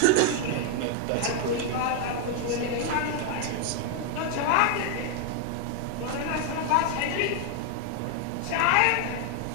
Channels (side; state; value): both; different; correlation 0.00